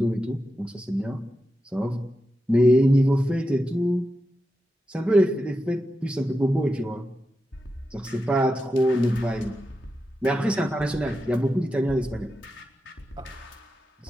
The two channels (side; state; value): both; normal; correlation 0.90